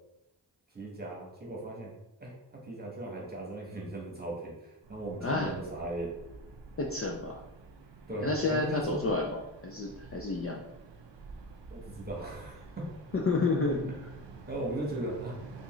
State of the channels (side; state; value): both; normal; correlation 0.23